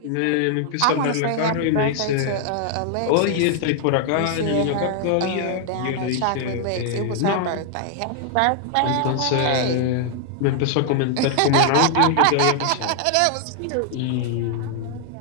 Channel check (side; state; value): both; different; correlation 0.00